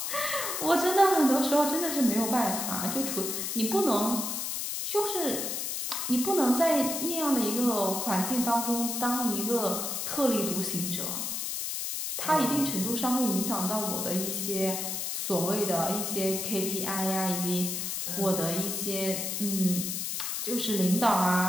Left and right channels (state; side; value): noise; left; hiss, 2 dB below the sound